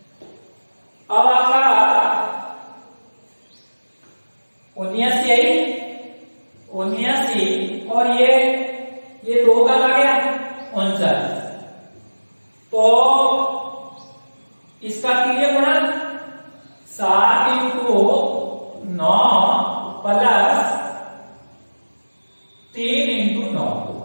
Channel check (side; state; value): both; inverted; correlation -1.00